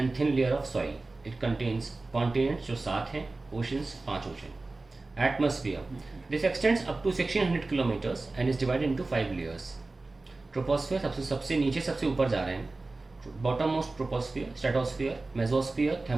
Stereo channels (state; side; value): quieter; left; 3.3 dB